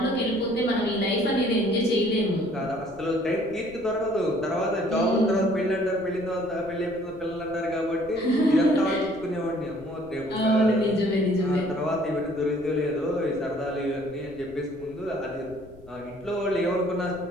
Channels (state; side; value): noise; left; rumble, 23 dB below the sound